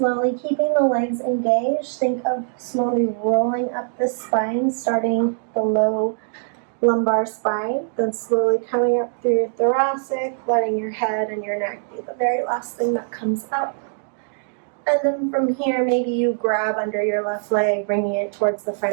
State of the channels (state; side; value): silent; left; digital silence